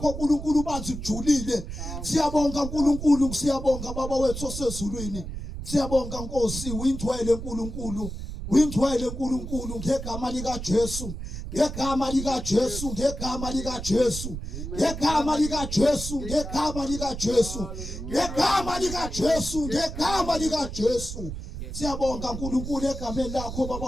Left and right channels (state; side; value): noise; right; rumble, 8 dB below the sound